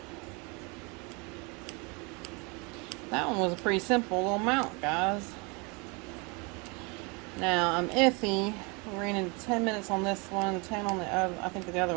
That one was a pretty simple little mount, guys. Now I'm iffy. We ran into 10 minutes on this one, 10 on the other. I think the other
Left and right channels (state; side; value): quieter; left; 30.0 dB